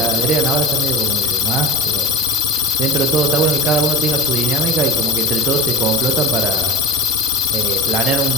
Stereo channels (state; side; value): normal; both; correlation 0.30